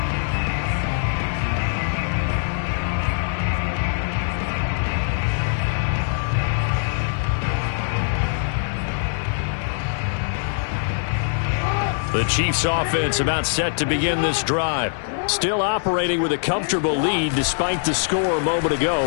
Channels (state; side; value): silent; right; 64 dB below the other